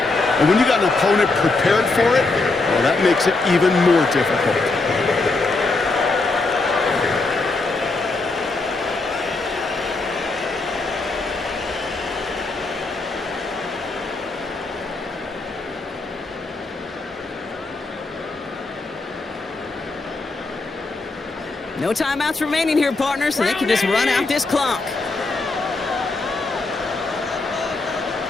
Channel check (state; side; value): quieter; right; 3.5 dB